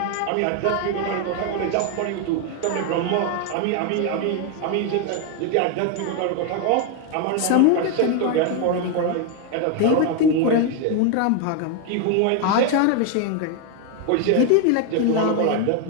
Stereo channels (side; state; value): both; different; correlation 0.01